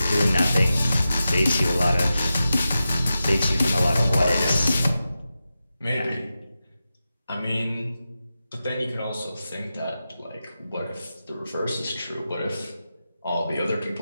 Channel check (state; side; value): inverted; both; correlation -0.92